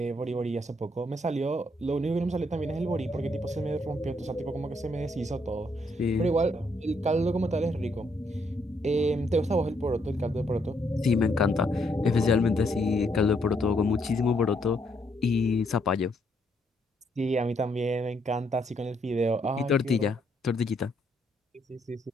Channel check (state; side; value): normal; both; correlation 0.73